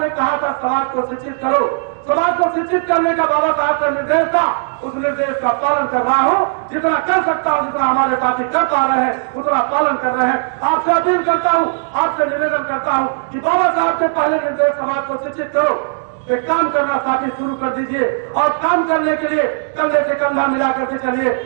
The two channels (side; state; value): left; silent; digital silence